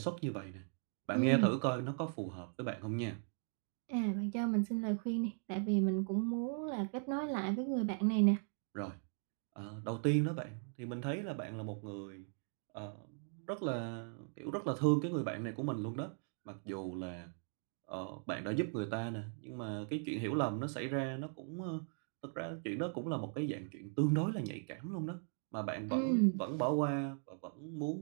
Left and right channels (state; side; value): silent; left; 52 dB below the other